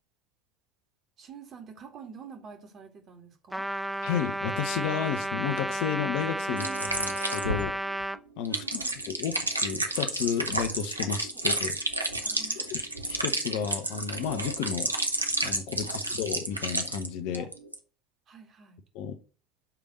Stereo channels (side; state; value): both; normal; correlation -0.05